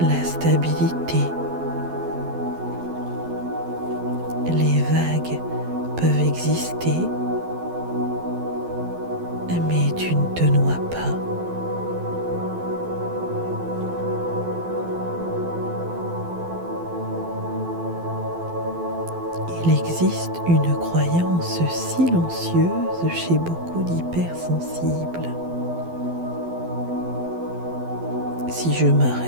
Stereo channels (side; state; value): left; late; 12 ms